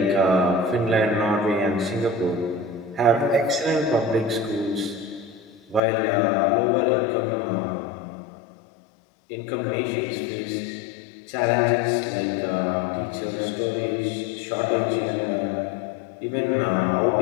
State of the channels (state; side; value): drops out; right; at 5.8 s